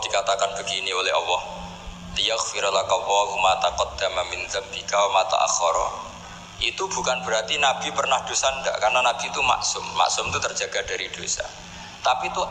dikatakan begini oleh Allah liyaghfira laka Allahu ma taqaddama min dzambika wa ma ta'akhkhara, itu bukan berarti Nabi pernah dosa, enggak, karena Nabi itu maksum. Maksum itu terjaga dari dosa. Tapi itu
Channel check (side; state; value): both; identical; correlation 1.00